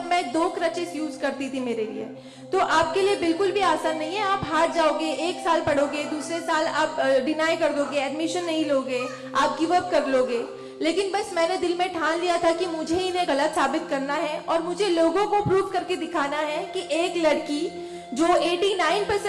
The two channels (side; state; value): both; identical; correlation 1.00